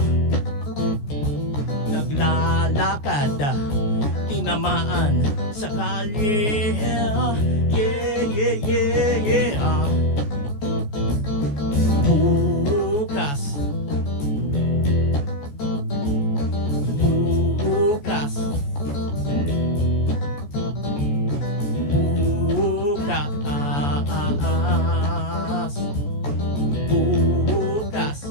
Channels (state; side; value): late; right; 14 ms